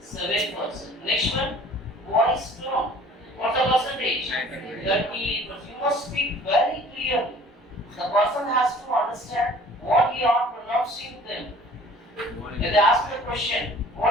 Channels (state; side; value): normal; both; correlation 0.50